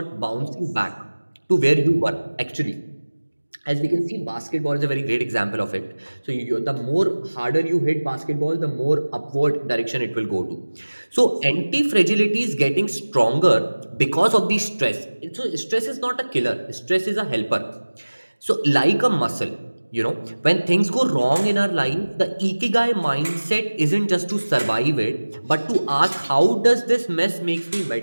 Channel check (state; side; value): inverted; both; correlation -1.00